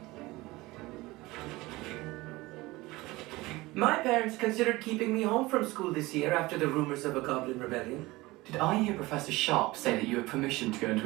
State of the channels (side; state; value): left; quieter; 20.6 dB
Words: My parents considered keeping me home from school this year after the rumors of a goblin rebellion. Did I hear Professor Sharp say that you had permission to go into